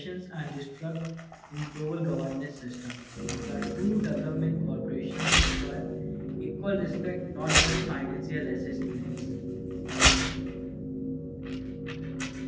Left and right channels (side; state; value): both; identical; correlation 1.00